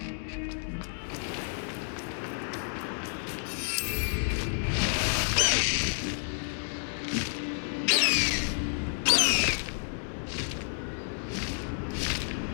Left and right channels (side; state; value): right; silent; digital silence